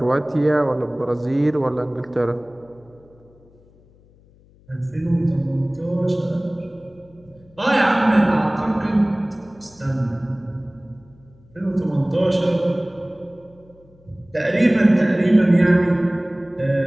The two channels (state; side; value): noise; left; hum, 29 dB below the sound